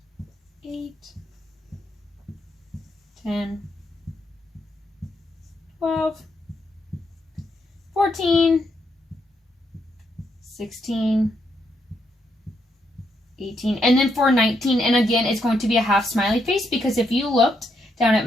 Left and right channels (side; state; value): both; normal; correlation 0.78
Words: 8, 10, 12, 14, 16, 18, and then for 19, and again, it's going to be a half smiley face, because if you looked down at